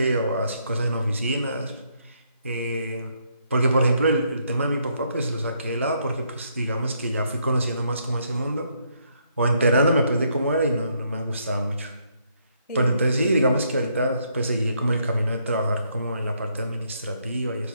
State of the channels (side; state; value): both; inverted; correlation -0.73